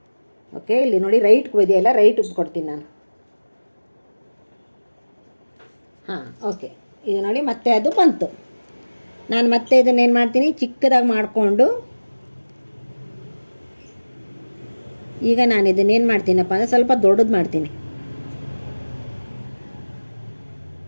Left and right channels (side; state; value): both; inverted; correlation -1.00